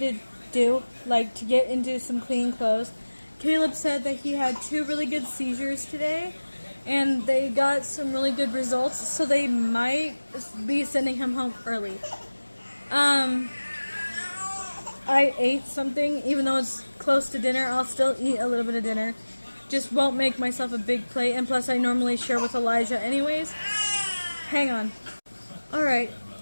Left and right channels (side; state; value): both; inverted; correlation -1.00